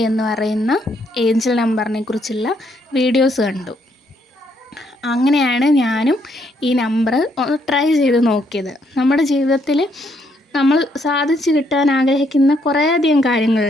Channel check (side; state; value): both; normal; correlation 0.72